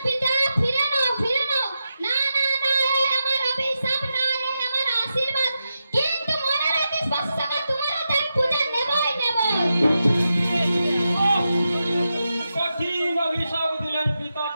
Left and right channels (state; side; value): inverted; both; correlation -0.89